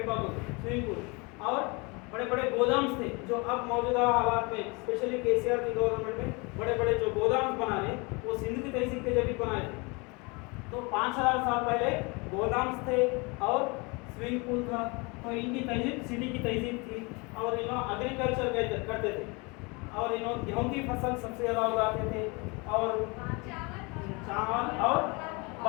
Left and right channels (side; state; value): right; quieter; 28.5 dB